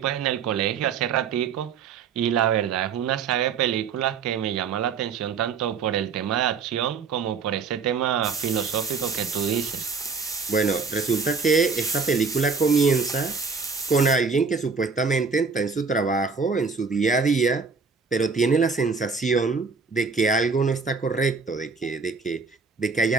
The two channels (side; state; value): left; quieter; 5.0 dB